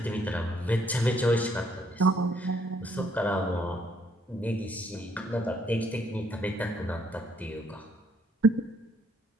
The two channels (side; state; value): both; normal; correlation 0.69